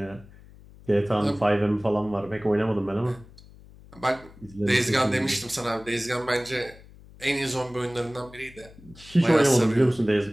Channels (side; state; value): left; noise; hum, 22 dB below the sound